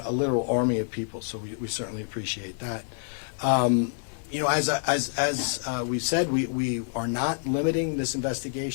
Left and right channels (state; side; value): silent; right; 60 dB below the other